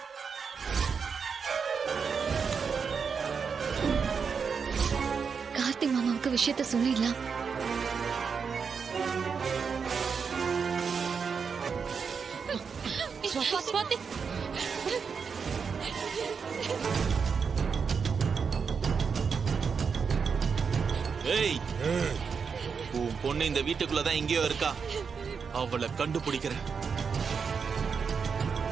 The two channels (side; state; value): left; quieter; 5.9 dB